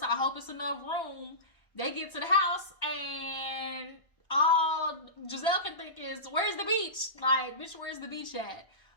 I hope it's enough room. They get to the house, and all Gizelle can think is, where's the beach? Like, bitch, where's the beach at?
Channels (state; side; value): late; right; 1.4 ms